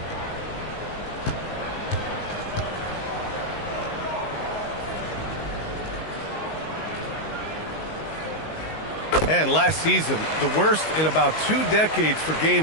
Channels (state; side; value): late; right; 19 ms